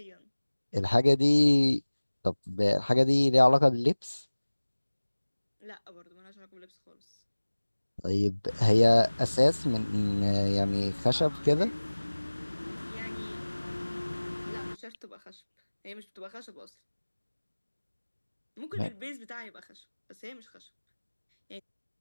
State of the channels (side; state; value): both; inverted; correlation -1.00